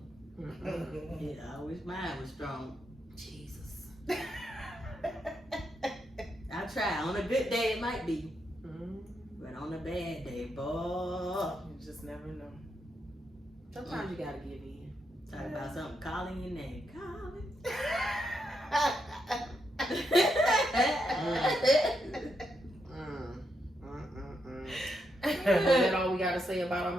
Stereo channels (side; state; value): both; normal; correlation 0.81